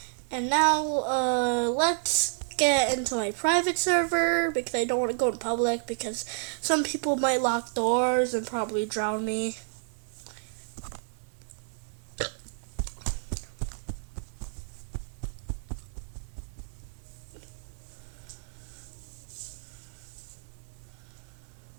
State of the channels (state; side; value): silent; left; 58 dB below the other